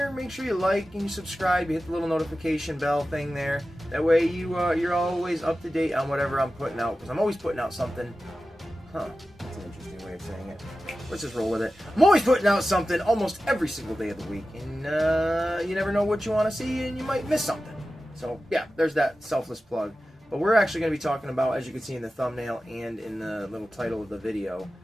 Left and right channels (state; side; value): normal; both; correlation 0.94